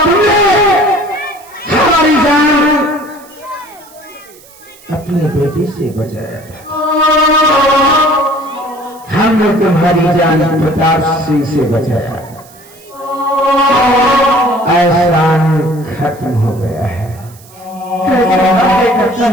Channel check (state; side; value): noise; right; hiss, 24 dB below the sound